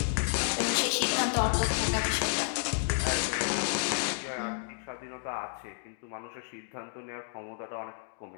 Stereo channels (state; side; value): silent; right; digital silence